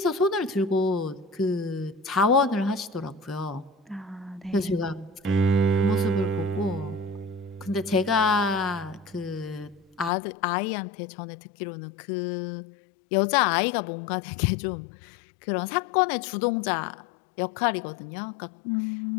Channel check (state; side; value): drops out; right; at 10.1 s